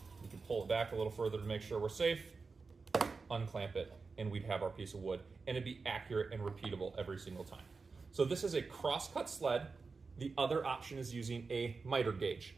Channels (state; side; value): quieter; left; 4.5 dB